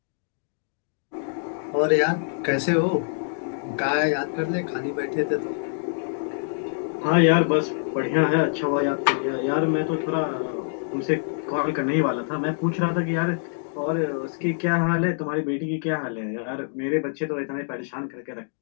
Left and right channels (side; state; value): right; silent; digital silence